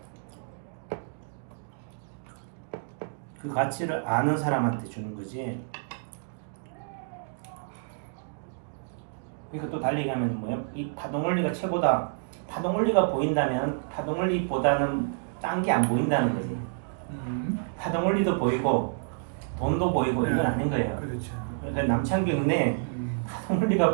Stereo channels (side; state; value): left; silent; digital silence